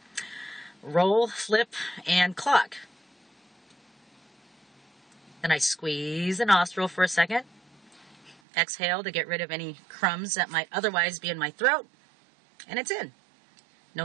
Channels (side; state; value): left; drops out; at 8.3 s